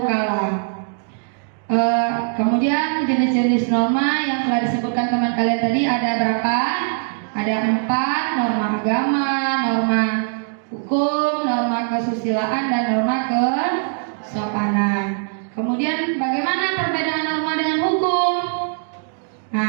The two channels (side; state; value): left; silent; digital silence